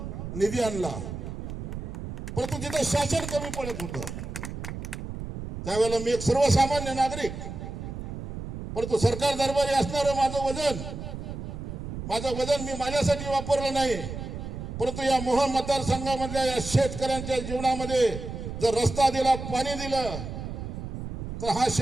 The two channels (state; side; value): noise; right; rumble, 7 dB below the sound